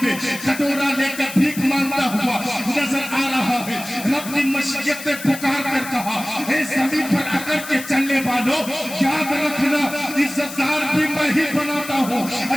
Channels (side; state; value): left; noise; hiss, 12 dB below the sound